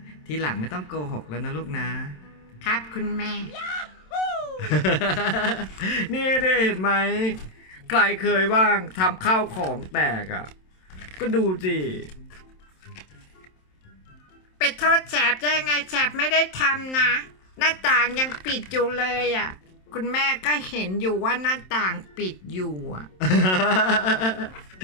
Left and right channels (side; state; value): right; late; 27 ms